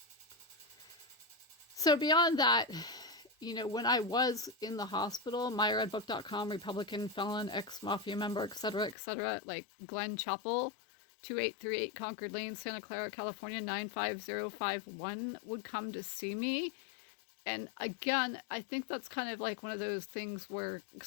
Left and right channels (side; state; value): right; drops out; at 9.0 s